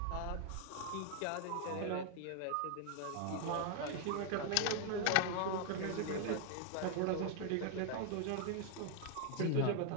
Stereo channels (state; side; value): different; both; correlation 0.00